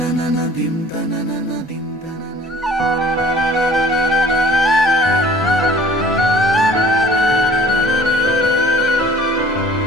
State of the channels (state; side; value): normal; both; correlation 0.50